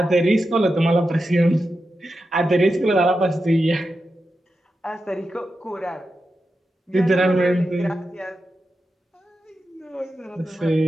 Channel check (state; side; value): normal; both; correlation 0.90